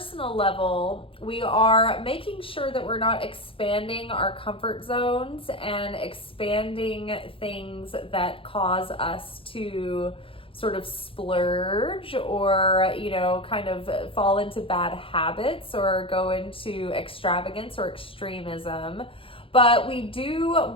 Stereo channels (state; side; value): late; right; 0.26 ms